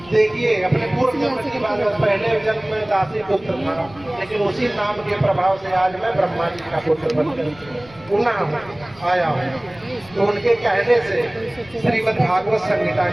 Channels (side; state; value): left; noise; rumble, 23 dB below the sound